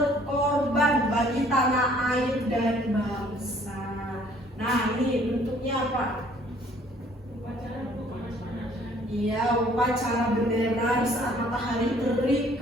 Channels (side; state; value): both; normal; correlation 0.58